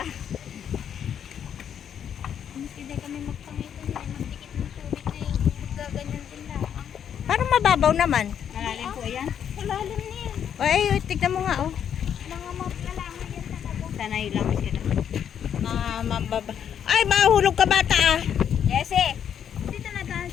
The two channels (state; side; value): quieter; right; 8.7 dB